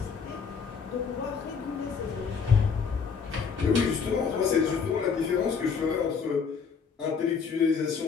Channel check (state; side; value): quieter; right; 5.8 dB